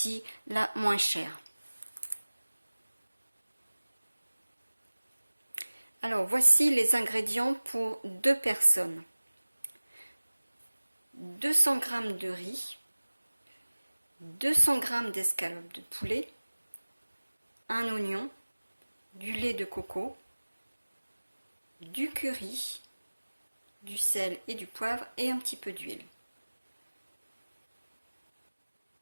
la moins chère. Alors, voici les ingrédients pour 2 personnes. 200 g de riz, 200 g d'escalope de poulet, un oignon, du lait de coco, du curry, du sel et du poivre et un petit peu d'huile.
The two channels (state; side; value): inverted; both; correlation -1.00